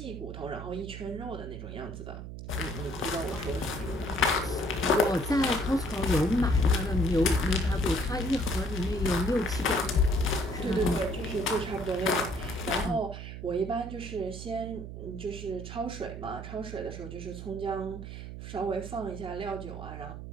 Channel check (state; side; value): noise; right; hum, 9 dB below the sound